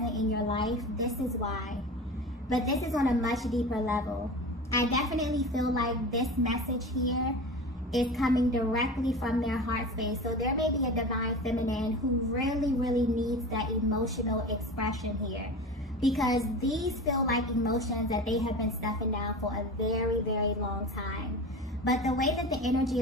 in your life, this is why. But this is on a much deeper level. I definitely feel like this message here is coming directly from their heart space. So there may be a Divine Feminine who really, really needs that emotional expression here, because these feel like emotions that they have been stuffing down for a very, very long time. But the way that the energy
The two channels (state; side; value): normal; both; correlation 0.31